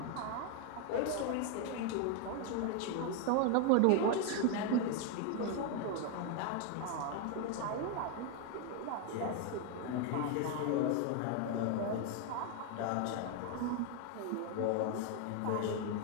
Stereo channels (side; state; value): both; different; correlation 0.01